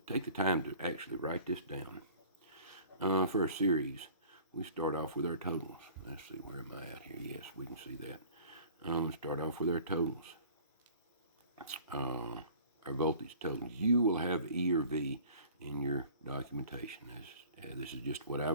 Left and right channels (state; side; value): inverted; both; correlation -0.48